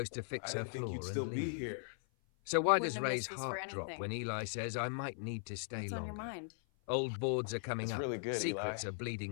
to fix I her didn't think you'd floor still and be leave. here. So why Wouldn't does have Ray's missed this for heart drop anything. when Eli says, I might need to stay What's on your longer? mind? Old boards are coming It's up. really good, Eli. Secrets are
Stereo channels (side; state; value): right; silent; 52 dB below the other